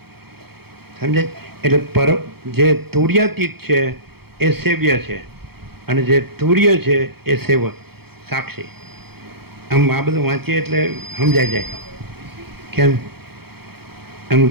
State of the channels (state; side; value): late; left; 0.96 ms